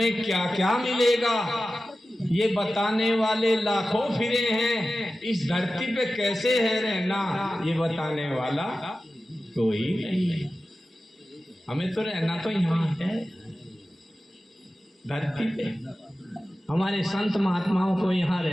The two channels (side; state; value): both; normal; correlation 0.94